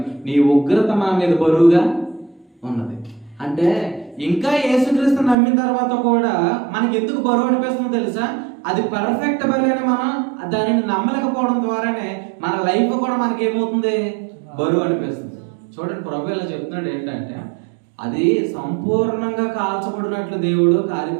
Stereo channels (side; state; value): left; drops out; at 5.4 s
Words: నీ ఉగ్రత మా మీద బరువుగా ఉన్నది. అంటే ఇంకా యేసుక్రీస్తు నమ్మిన తర్వాత కూడా మనకి ఎందుకు బరువు అనిపిస్తుందో తెలుసా? అది పర్ఫెక్ట్ బలి అని మనం దానిని నమ్మలేకపోవడం ద్వారానే మన లైఫ్ కూడా మనకి ఏమవుతుంది? బరువు అనిపిస్తుంది. చూడండి, ప్రభు ఇలా చెప్తున్నాడు ఏంటంటే అది సంపూర్ణంగా కాల్చబడినట్లు దేవుడు